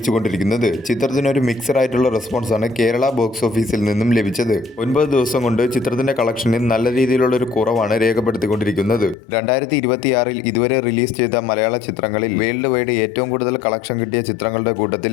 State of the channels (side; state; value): right; drops out; at 9.2 s